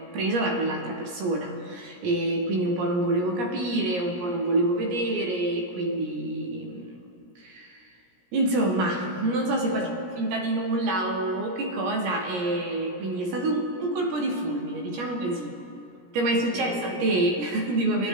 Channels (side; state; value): left; late; 17 ms